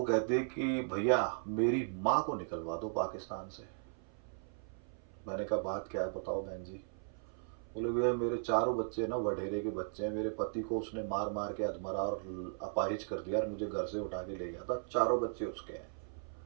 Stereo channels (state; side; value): silent; left; 53 dB below the other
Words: कहते कि भैया मेरी माँ को निकलवा दो पाकिस्तान से। मैंने कहा बात क्या है बताओ बहन जी। बोले भैया मेरे चारों बच्चे ना वडेरे के बच्चे हैं, मेरे पति को उसने मार मार के अधमरा और अपाहिज कर दिया और मुझे घर से उठा के ले गया था, चारों बच्चे उसके हैं